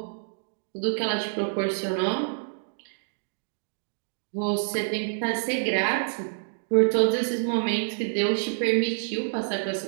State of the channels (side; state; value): left; silent; digital silence